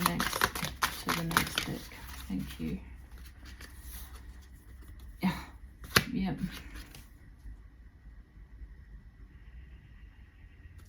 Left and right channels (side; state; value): both; identical; correlation 1.00